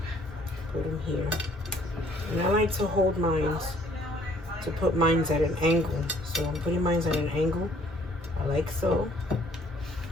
put them here. And I like to hold mine, to put mine at an angle. So I'm putting mine at an angle, like so.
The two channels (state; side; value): normal; both; correlation 0.60